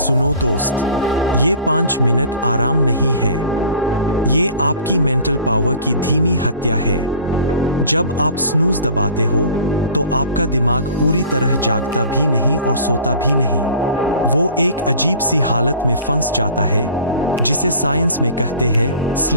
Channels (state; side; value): inverted; both; correlation -0.45